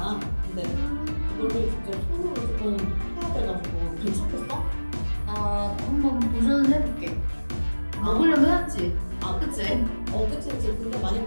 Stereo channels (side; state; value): both; inverted; correlation -1.00